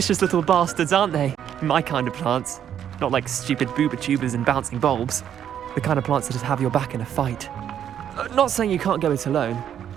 little bastards, aren't they? My kind of plants. Not like stupid booba tubers and bouncing bulbs. The kind of plants that just have your back in a fight. Not saying you can't go it alone,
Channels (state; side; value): quieter; left; 9.6 dB